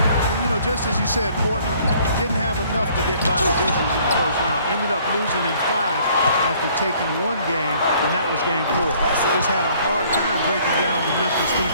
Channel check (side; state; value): both; inverted; correlation -0.59